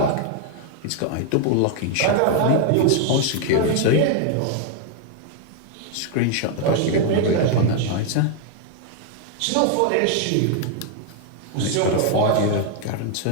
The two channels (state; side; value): different; both; correlation 0.00